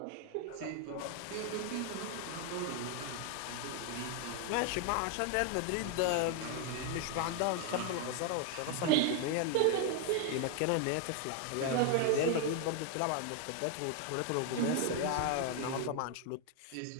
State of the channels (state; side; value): different; both; correlation 0.01